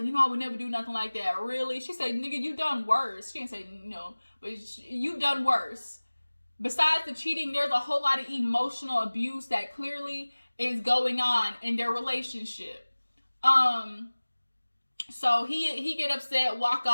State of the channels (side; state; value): both; inverted; correlation -1.00